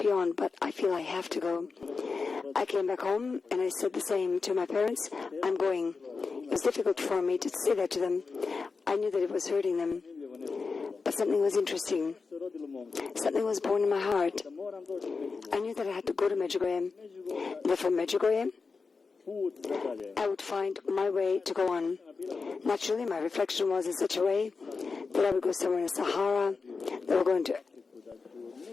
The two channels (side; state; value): right; quieter; 4.6 dB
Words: you on, but I feel I have to go. I came back home and I said the same to my parents, I'm going. It was difficult for me to say that to them. I knew that it was hurting them. But something was interesting. Something was born in my heart. I knew that I had to go to Medjugorje. That from Medjugorje, I would find my way to go on. Naturally, my reflection was in such a way that I would go somewhere in the Sahara, that I would go into